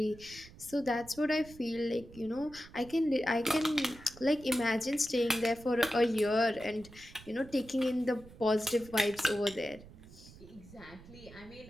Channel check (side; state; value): right; noise; rumble, 19 dB below the sound